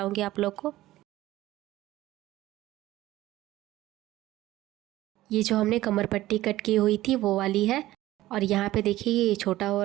आप लोग को। ये जो हमने कमर पट्टी कट की हुई थी वो वाली है और यहाँ पे देखिए ये छोटा हो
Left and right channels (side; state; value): left; quieter; 15.9 dB